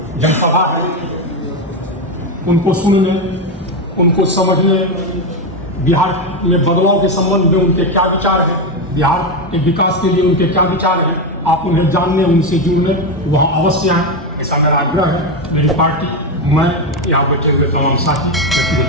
जनसभा है। उनको सुनने, उनको समझने, बिहार में बदलाव के संबंध में उनके क्या विचार हैं, बिहार के विकास के लिए उनके क्या विचार हैं, आप उन्हें जानने, उनसे जुड़ने वहाँ अवश्य आएँ, ऐसा मेरा आग्रह है। मेरी पार्टी, मैं, यहाँ बैठे हुए तमाम साथी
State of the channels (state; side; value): normal; both; correlation 0.10